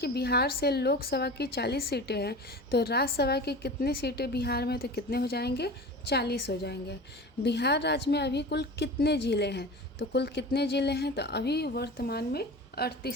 बिहार से लोकसभा की 40 सीटें हैं, तो राज्यसभा की कितनी सीटें बिहार में, तो कितने हो जाएंगे, 40 हो जाएंगे। बिहार राज्य में अभी कुल कितने ज़िले हैं, तो कुल कितने ज़िले हैं, तो अभी वर्तमान में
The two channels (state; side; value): normal; both; correlation 0.34